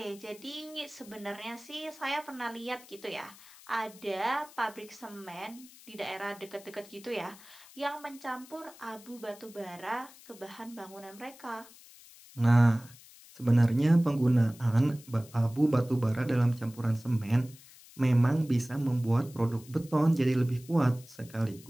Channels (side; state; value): left; noise; hiss, 21 dB below the sound